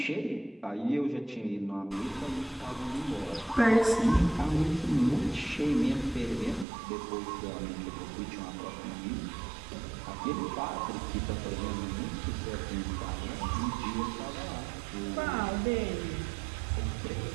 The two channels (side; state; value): left; drops out; at 6.7 s